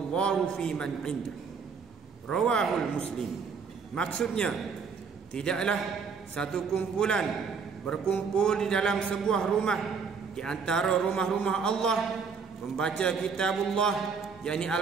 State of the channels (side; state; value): left; quieter; 5.7 dB